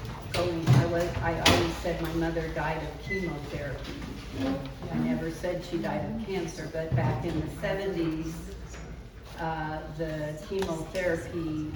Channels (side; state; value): both; identical; correlation 1.00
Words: going. I always said my mother died of chemotherapy. I never said she died of cancer, but back in the 70s, the chemotherapy